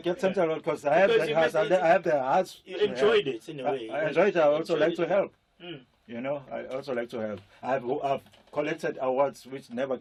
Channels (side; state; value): both; identical; correlation 1.00